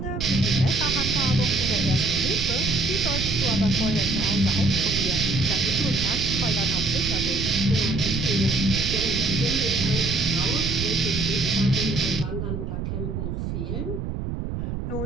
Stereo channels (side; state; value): right; noise; rumble, 4 dB below the sound